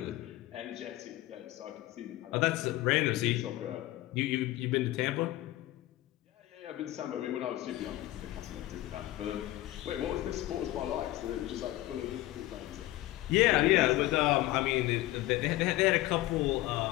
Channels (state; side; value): quieter; right; 16.7 dB